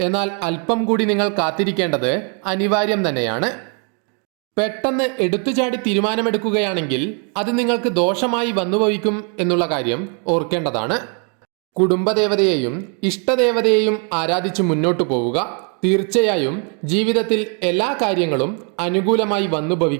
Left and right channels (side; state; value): left; quieter; 39.1 dB